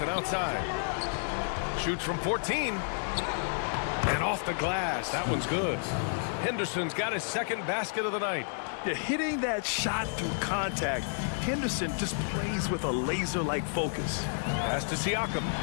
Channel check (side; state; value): right; silent; 56 dB below the other